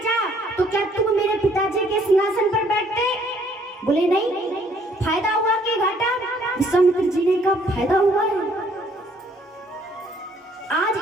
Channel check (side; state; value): both; normal; correlation 0.63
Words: तो क्या तुम मेरे पिताजी के सिंहासन पर बैठते? बोले नहीं। फायदा हुआ कि घाटा? विश्वामित्र जी ने कहा फायदा हुआ है। आज